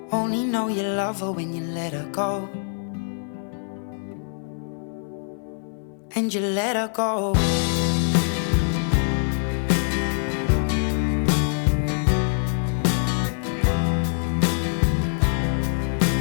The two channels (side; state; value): right; silent; digital silence